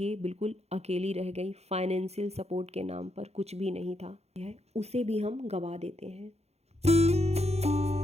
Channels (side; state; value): left; late; 0.31 ms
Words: बिल्कुल अकेली रह गई। फाइनेंशियल सपोर्ट के नाम पर कुछ भी नहीं था, उसे भी हम गवा देते हैं।